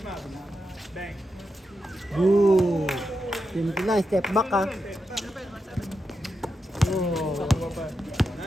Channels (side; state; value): both; normal; correlation 0.87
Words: Bang. Boo. Simple lang, step back ha. Oh.